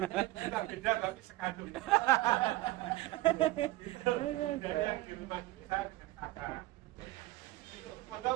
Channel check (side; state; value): left; quieter; 18.1 dB